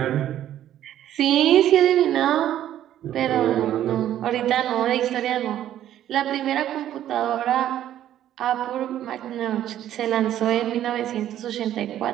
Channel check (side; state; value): left; quieter; 11.7 dB